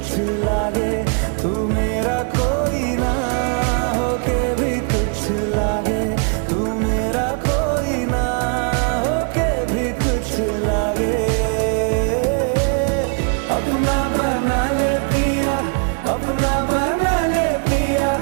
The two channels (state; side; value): quieter; left; 38.5 dB